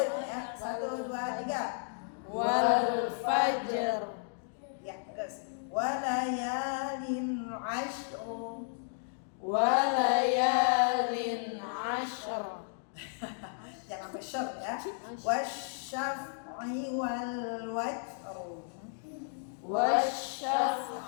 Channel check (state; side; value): silent; right; digital silence